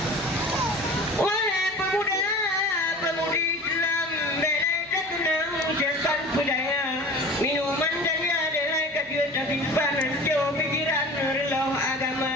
pemuda-pemudi Islam, belai terkenang serban budaya, minuman dan adalah kegiatan simpanan jauh pikiran relau agama.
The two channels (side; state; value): right; noise; hum, 26 dB below the sound